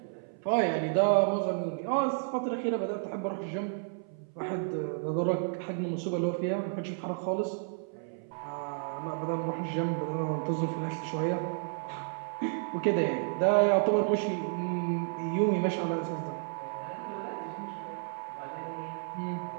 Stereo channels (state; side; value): silent; left; 57 dB below the other